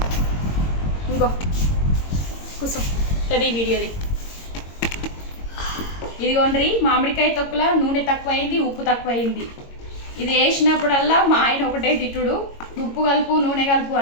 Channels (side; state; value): right; late; 22 ms